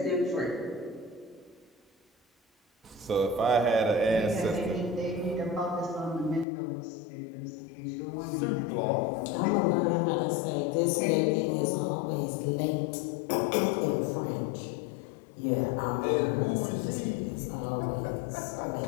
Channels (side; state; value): right; drops out; at 6.5 s